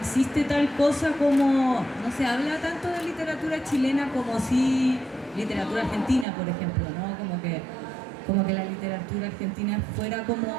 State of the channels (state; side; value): drops out; left; at 6.2 s